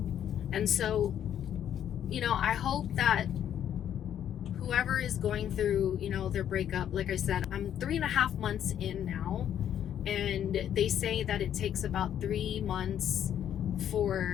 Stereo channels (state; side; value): quieter; right; 10.0 dB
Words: And so, you know, I hope that whoever is going through, you know, their breakup, like I said, I'm 3.5 months in now, and they say that it takes about 3 months